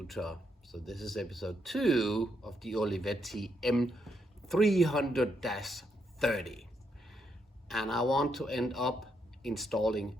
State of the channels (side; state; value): both; normal; correlation 0.78